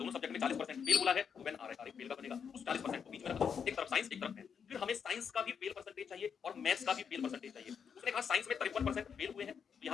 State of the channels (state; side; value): quieter; right; 7.0 dB